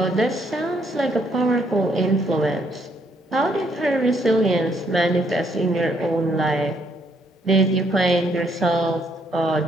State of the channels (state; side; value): normal; both; correlation 0.71